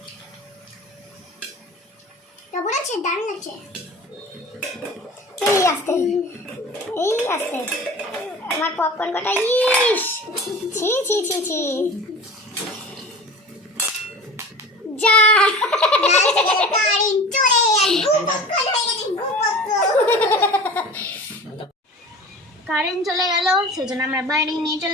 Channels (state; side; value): normal; both; correlation 0.37